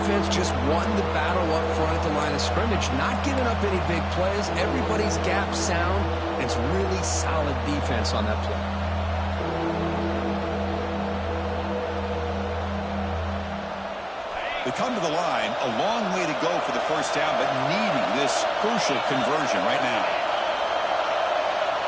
just won the battle up front at the line of scrimmage, not giving up any big plays. Everybody's gap sound, and it's really solid defense on that play. They come to the line, a long way to go for the first down, but needing this crucial conversion right now.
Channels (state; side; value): identical; both; correlation 1.00